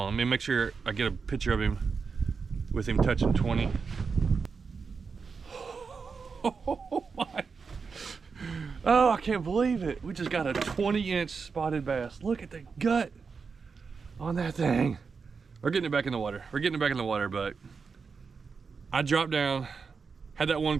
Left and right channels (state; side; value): quieter; left; 5.2 dB